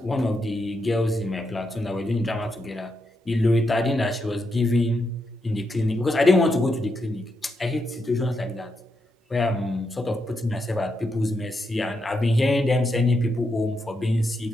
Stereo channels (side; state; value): both; normal; correlation 0.83